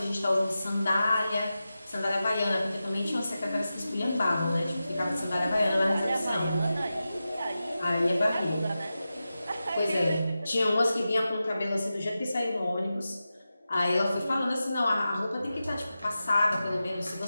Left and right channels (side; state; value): both; inverted; correlation -0.93